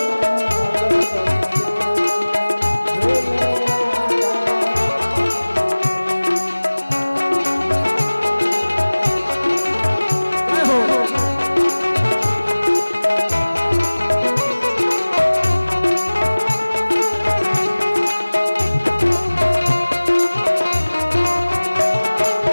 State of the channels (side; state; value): both; inverted; correlation -1.00